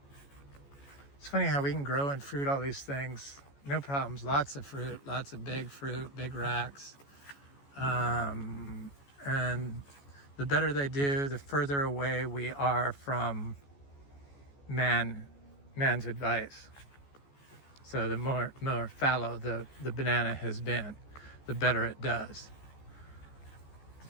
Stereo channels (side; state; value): right; late; 14 ms